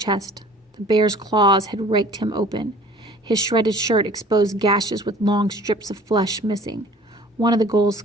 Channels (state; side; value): normal; both; correlation 0.50